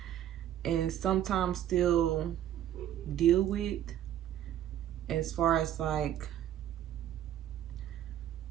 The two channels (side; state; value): left; quieter; 11.3 dB